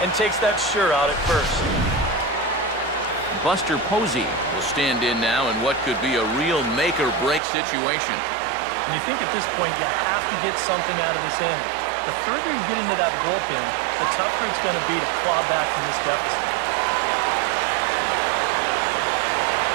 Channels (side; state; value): left; drops out; at 7.4 s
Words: and takes that sure out at first. Buster Posey will stand in now in what could be a real make-or-break situation. And you think at this point you have to get something out of this inning. The further you get into that bullpen, the tougher it's going to be to claw back from this deficit.